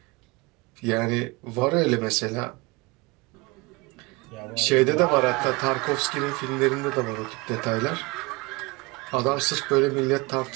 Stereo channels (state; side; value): quieter; left; 25.0 dB